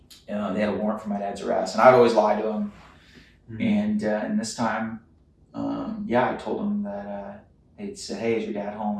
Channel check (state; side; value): identical; both; correlation 1.00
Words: They had a warrant for my dad's arrest, and I'd always lie to him. And this time, I told him that they'd said, "Hey, is your dad home?"